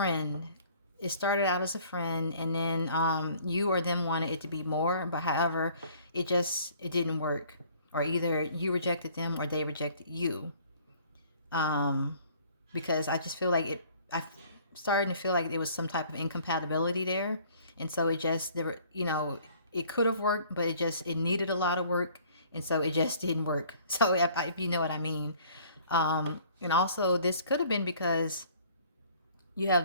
It started out as a friend, and then you or them wanted it to be more, but however, it didn't work, or either you rejected them or they rejected you. Because I just feel like I'm starting to feel like there was some type of incompatibility there, and so it could have worked, but it needed a lot of work, and so it just didn't work. So if you know what I mean. And also this could have been because you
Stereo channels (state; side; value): inverted; both; correlation -0.55